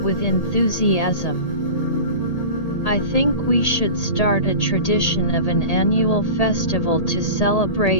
with enthusiasm, "I think we should start a tradition of an annual festival to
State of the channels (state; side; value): late; right; 1.8 ms